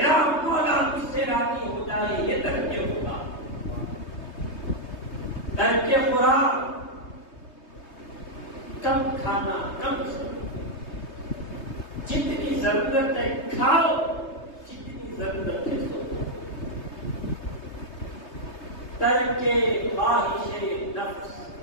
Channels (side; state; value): right; late; 3.2 ms